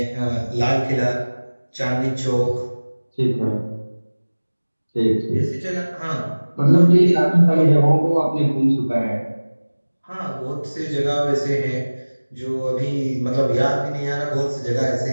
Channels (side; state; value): both; inverted; correlation -1.00